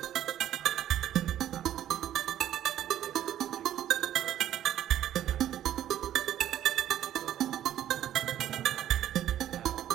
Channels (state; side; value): quieter; left; 11.6 dB